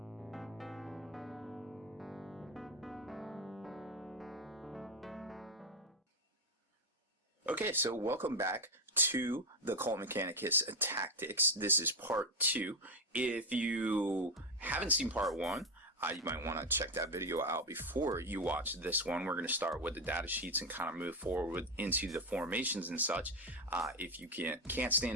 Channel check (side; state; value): both; normal; correlation 0.10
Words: Okay, so welcome back to the Cult Mechanicus Tactics. This is part 2. If you haven't seen part 1, you might want to check that video out before you watch this one. We're going to start with the data sheets and kind of move forward into the formations and such. If you can't